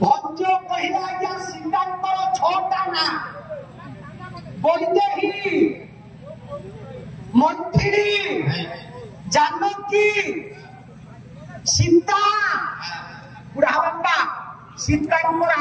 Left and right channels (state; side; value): identical; both; correlation 1.00